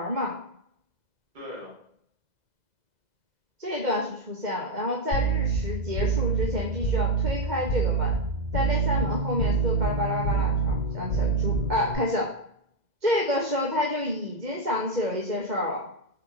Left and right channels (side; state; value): left; late; 2.0 ms